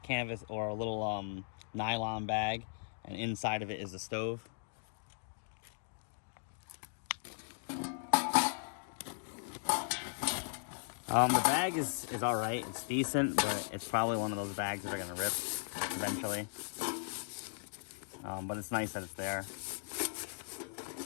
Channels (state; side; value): silent; right; digital silence